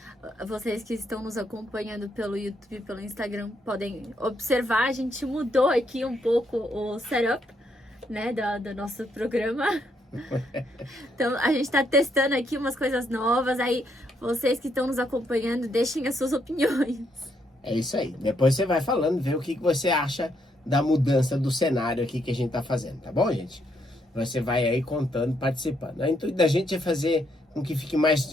que estão nos acompanhando pelo YouTube e pelo Instagram podem observar, a gente mudou aqui um pouco o setup, né, do nosso programa. Então, a gente tá testando aqui umas coisas novas, aí vocês que estão nos acompanhando, deixem as suas opiniões. É isso aí. Depois você vai falando, vê o que você acha da mudança do cenário aqui que a gente tá fazendo, tá bom, gente? Você vai aí contando, participando. O intuito da gente é fazer com que fique mais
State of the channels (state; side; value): normal; both; correlation 0.75